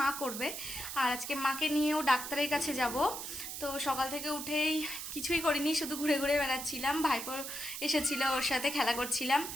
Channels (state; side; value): noise; right; hiss, 7 dB below the sound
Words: করবে। আর আজকে মাকে নিয়েও ডাক্তারের কাছে যাব। তো সকাল থেকে উঠেই কিছুই করিনি, শুধু ঘুরে ঘুরে বেড়াচ্ছিলাম। ভাইপো এসেছিল, ওর সাথে খেলা করছিলাম।